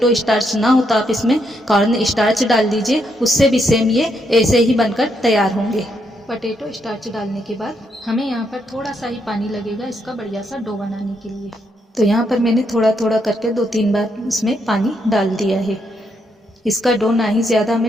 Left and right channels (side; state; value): both; normal; correlation 0.77